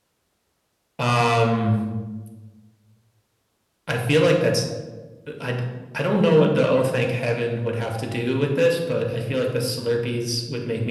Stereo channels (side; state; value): both; identical; correlation 1.00